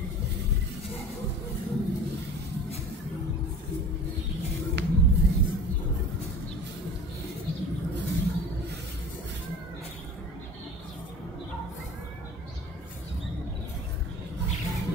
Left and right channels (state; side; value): normal; both; correlation 0.40